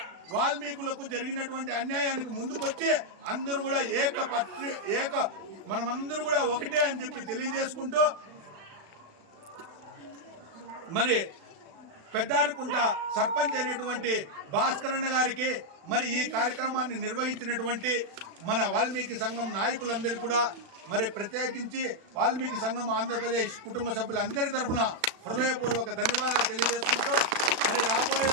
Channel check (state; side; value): late; left; 36 ms